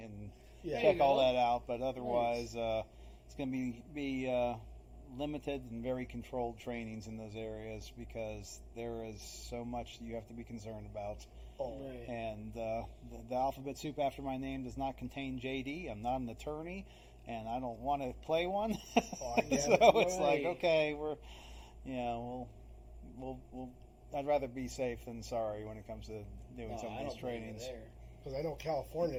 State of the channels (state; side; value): identical; both; correlation 1.00